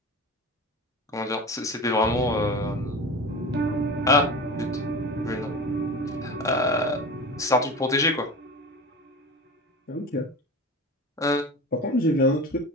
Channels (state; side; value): normal; both; correlation 0.31